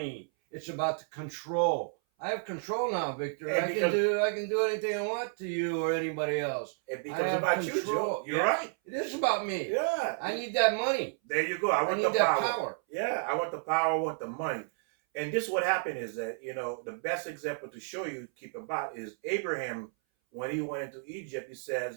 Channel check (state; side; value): silent; left; 57 dB below the other